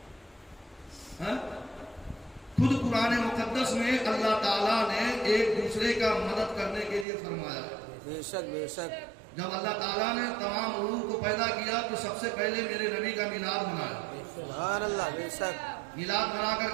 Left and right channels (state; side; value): drops out; left; at 7.1 s